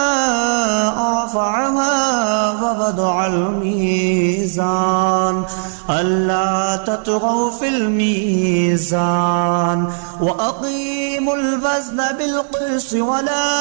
رفعها ووضع الميزان ألا تطغوا في الميزان وأقيموا الوزن بالقسط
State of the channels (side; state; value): left; silent; digital silence